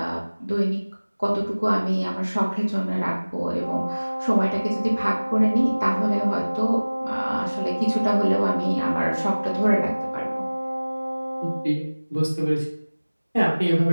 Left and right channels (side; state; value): both; inverted; correlation -1.00